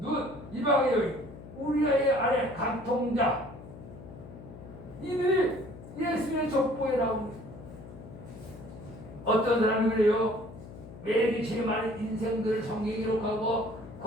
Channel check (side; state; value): left; noise; hum, 15 dB below the sound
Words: 이방의 여인, 우리의 아내 간통자 이들이 예수의 족보에 나옵니다. 어떤 사람이 그래요? 매일 제일 많은 인생들을 성경에 기록하고